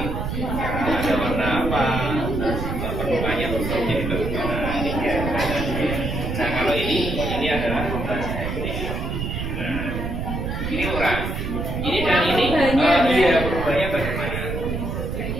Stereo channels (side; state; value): right; noise; rumble, 3 dB below the sound